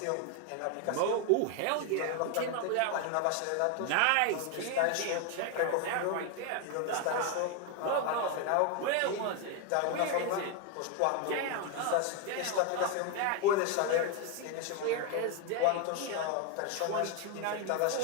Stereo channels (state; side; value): different; both; correlation 0.01